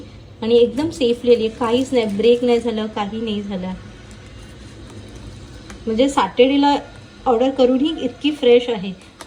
आणि एकदम सेफ लिहिली आहे. काहीच नाही, ब्रेक नाही झालं, काही नाही झालं. म्हणजे सॅटर्डेला ऑर्डर करूनही इतकी फ्रेश आहे.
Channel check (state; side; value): identical; both; correlation 1.00